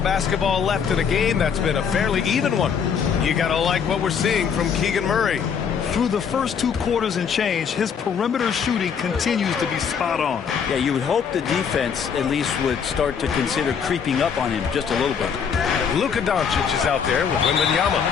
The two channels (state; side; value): quieter; right; 6.9 dB